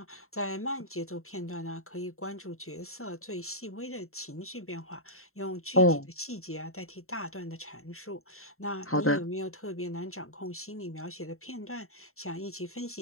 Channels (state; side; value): late; right; 0.63 ms